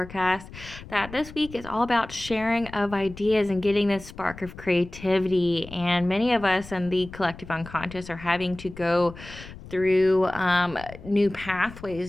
that this week is all about sharing of ideas and getting this spark of creativity, and many of us in the collective unconscious are having to go through new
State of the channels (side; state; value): left; noise; rumble, 16 dB below the sound